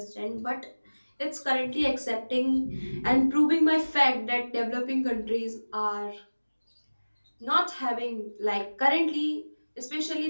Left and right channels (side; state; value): both; inverted; correlation -1.00